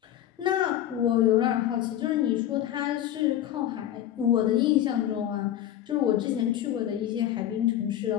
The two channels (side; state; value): right; quieter; 11.7 dB